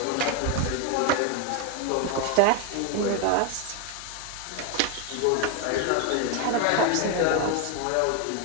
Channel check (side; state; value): both; different; correlation 0.01